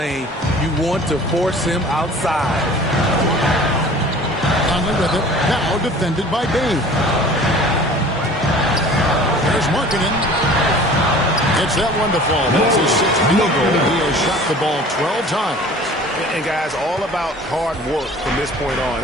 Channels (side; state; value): both; normal; correlation 0.45